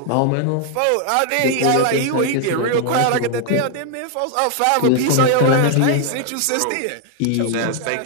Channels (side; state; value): both; different; correlation 0.00